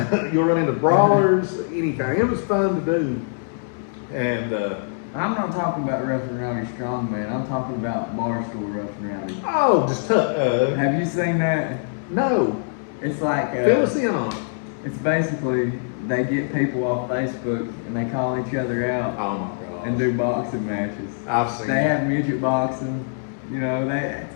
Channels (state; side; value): silent; right; digital silence